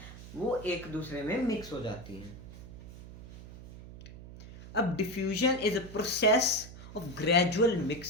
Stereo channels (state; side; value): noise; right; hum, 15 dB below the sound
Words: वो एक दूसरे में मिक्स हो जाती हैं। अब diffusion is a process of gradual